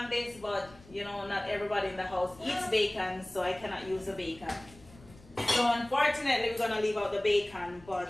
this, but you know, not everybody in the house eats bacon, so I cannot use the bacon. So unfortunately, we're gonna leave out the bacon,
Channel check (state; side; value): noise; left; rumble, 22 dB below the sound